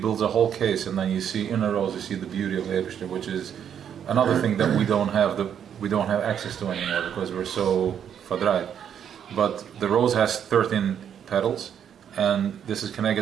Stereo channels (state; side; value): quieter; left; 8.7 dB